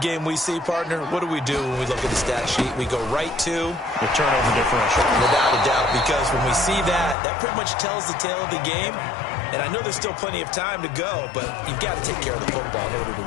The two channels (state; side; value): drops out; right; at 7.2 s